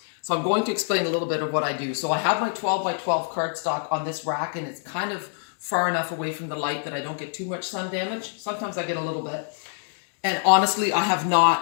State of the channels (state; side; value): silent; right; digital silence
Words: So I'm going to explain a little bit of what I do. So I have my 12 by 12 cardstock on this rack, and it's kind of far enough away from the light that I don't get too much sun damage. Sometimes I get a little bit. And honestly, I have